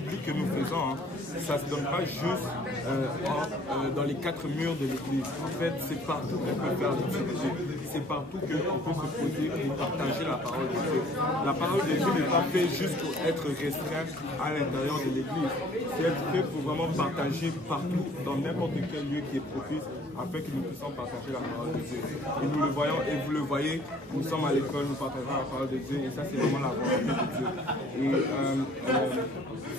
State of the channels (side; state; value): both; normal; correlation 0.55